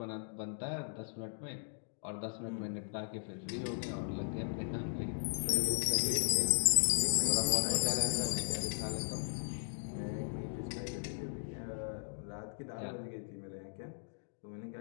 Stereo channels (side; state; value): right; silent; digital silence